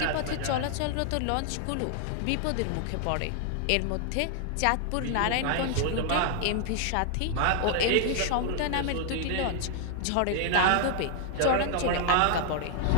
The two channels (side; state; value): both; different; correlation 0.00